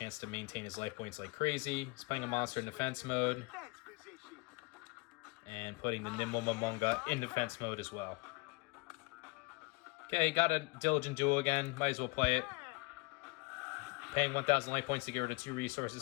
to maintain his life points like crazy. He's playing a monster in defense mode. And putting the Nimble Momonga in defense mode as well. Okay, got a Diligent Duel again. Might as well play it. Paying 1000 life points to get rid of 2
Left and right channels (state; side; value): quieter; right; 25.4 dB